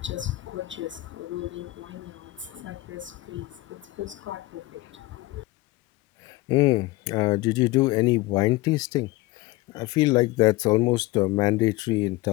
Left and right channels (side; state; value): right; quieter; 19.8 dB